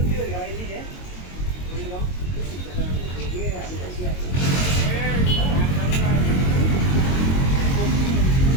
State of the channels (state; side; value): late; right; 22 ms